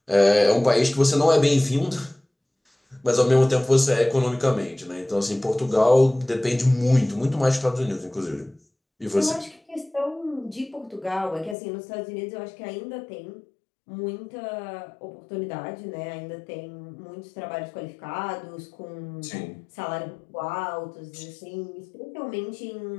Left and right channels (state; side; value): drops out; right; at 11.6 s